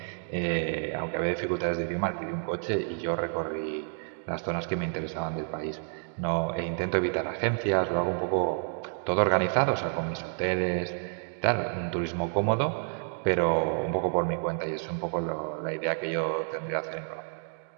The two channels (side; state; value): left; silent; 58 dB below the other